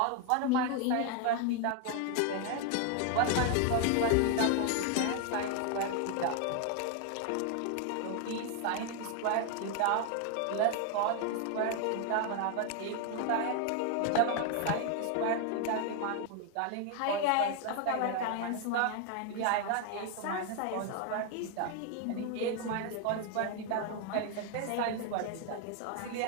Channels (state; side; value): different; both; correlation 0.01